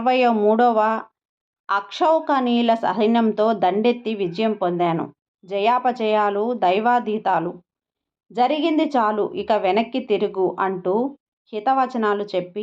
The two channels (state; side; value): identical; both; correlation 1.00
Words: అక్షౌకణీల సైన్యంతో దండెత్తి విజయం పొందాను. జయాపజయాలు దైవాధీతాలు. జరిగింది చాలు, ఇక వెనక్కి తిరుగు అంటూ హితవచనాలు